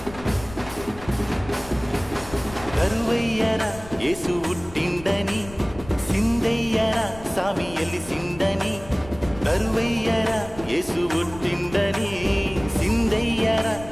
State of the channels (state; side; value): noise; left; rumble, 17 dB below the sound